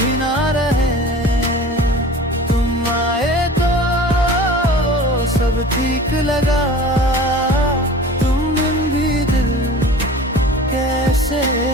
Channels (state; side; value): normal; both; correlation 0.40